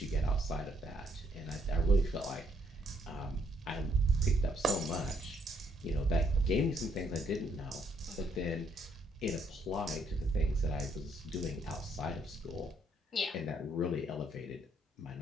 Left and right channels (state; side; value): normal; both; correlation 0.71